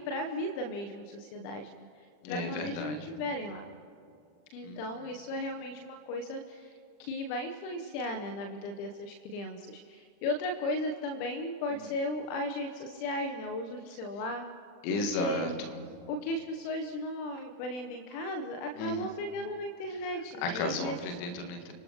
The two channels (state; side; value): late; right; 40 ms